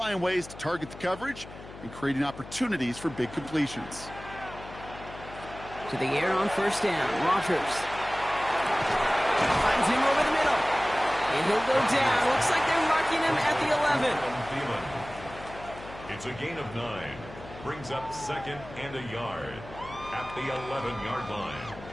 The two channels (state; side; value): noise; left; hum, 15 dB below the sound